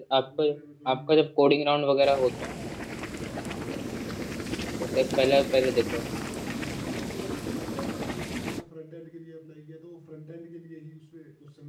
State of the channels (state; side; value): identical; both; correlation 1.00